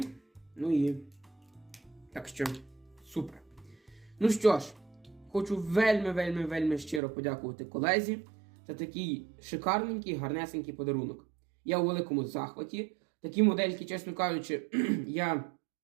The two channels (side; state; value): left; drops out; at 7.0 s